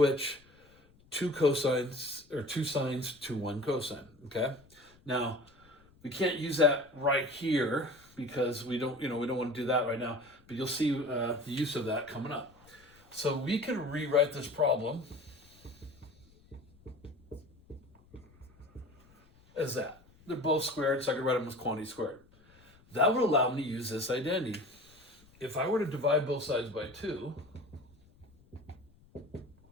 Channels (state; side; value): noise; left; rumble, 28 dB below the sound